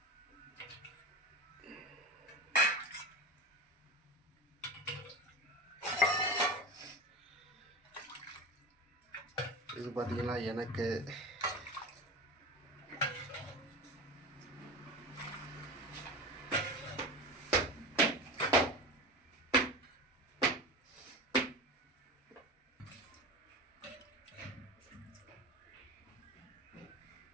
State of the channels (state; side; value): normal; both; correlation 0.28